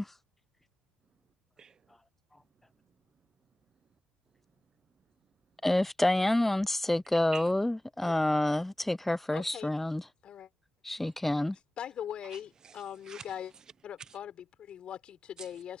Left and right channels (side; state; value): both; normal; correlation 0.98